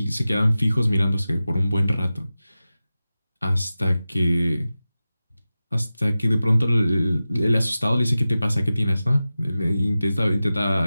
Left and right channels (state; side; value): inverted; both; correlation -0.95